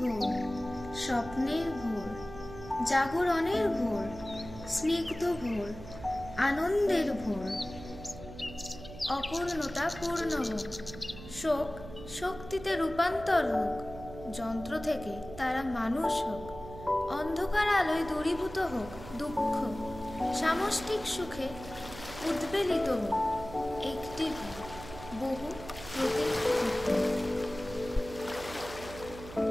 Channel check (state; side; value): noise; right; hum, 14 dB below the sound